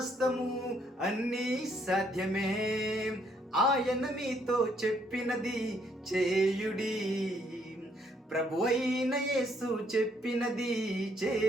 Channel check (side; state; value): both; normal; correlation 0.69